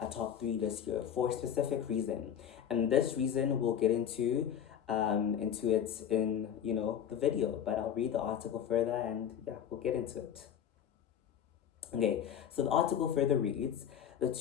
a top three this year for a specific reason, and this reason we'll get into it in the video, but I'll read the article further and yeah, we'll get into it. Okay, so the article further reads, the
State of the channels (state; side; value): quieter; right; 9.1 dB